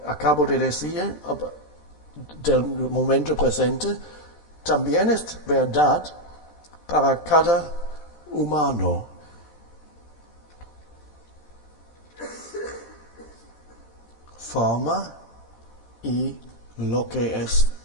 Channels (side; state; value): right; late; 13 ms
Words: acabo de decir del momento presente, también es verdad para cada humano. Forma y lo que es